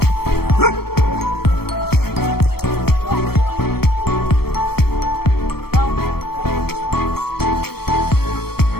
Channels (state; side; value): late; right; 0.95 ms